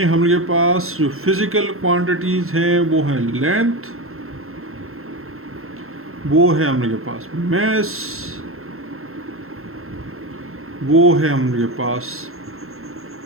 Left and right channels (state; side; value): late; left; 0.62 ms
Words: हम लोग के पास जो फिजिकल क्वांटिटीज़ हैं वो है लेंथ, वो है हम लोग के पास मैस, वो है हम लोग के पास